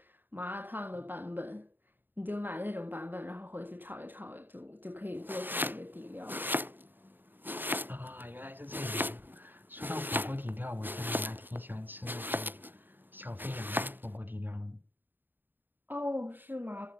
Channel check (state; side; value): late; left; 0.093 ms